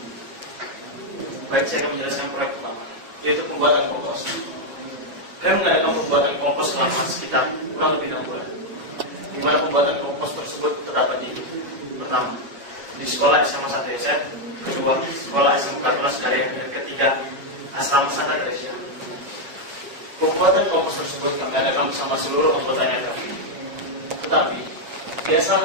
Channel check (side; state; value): left; late; 7.2 ms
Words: Baik, saya akan menjelaskan proyek pertama, yaitu pembuatan kompos. Kami mengadakan pembuatan kompos selama sekitar kurang lebih 6 bulan, di mana pembuatan kompos tersebut terdapat di pertama, di sekolah SMA Santo Yosef, kedua, sekolah SMK Tunas Karya, dan ketiga, asrama Santa Teresa. Pembuatan kompos tersebut kami adakan bersama seluruh anggotanya kami. Tetapi, di